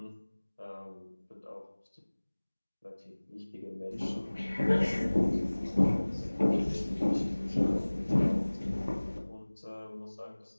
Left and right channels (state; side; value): inverted; both; correlation -1.00